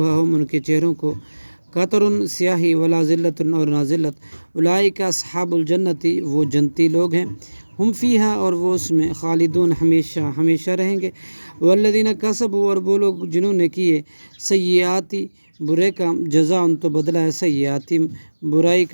ان کے چہروں کو قطر سیاہی ولا ذلت اور نہ ذلت اولئک اصحاب الجنتی وہ جنتی لوگ ہیں ہم فیہا اور وہ اس میں خالدون ہمیشہ ہمیشہ رہیں گے والذین کسبوا اور وہ لوگ جنہوں نے کیے سیئاتی برے کام جزا ان تو بدلہ ہے سیئاتی برائی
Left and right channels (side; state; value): both; inverted; correlation -1.00